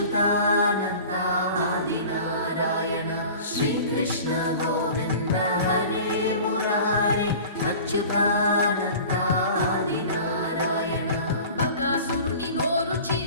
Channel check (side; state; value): both; inverted; correlation -0.40